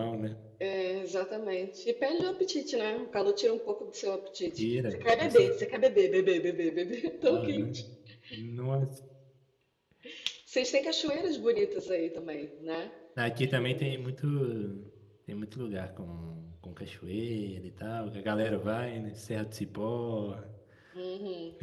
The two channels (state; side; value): identical; both; correlation 1.00